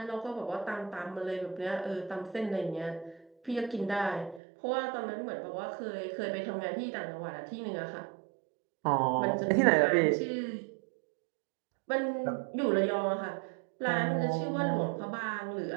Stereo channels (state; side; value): drops out; left; at 4.4 s